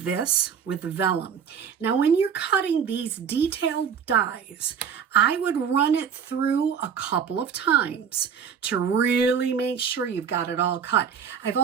this, with vellum. Now, when you're cutting these detailed dies, I would run it through a couple of times to really make sure you've got it all cut. I've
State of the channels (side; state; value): left; quieter; 7.3 dB